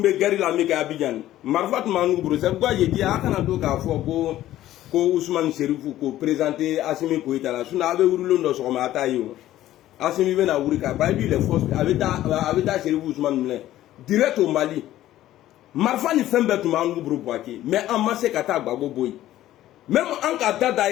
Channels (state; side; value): quieter; right; 13.9 dB